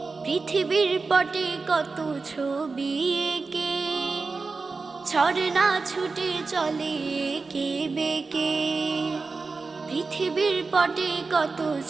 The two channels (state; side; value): quieter; left; 4.2 dB